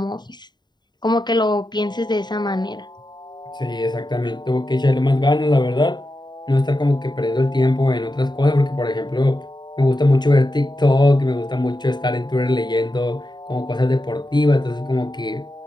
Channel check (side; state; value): right; late; 0.21 ms